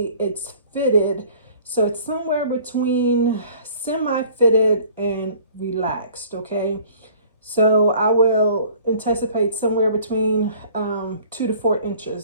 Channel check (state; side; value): inverted; both; correlation -0.52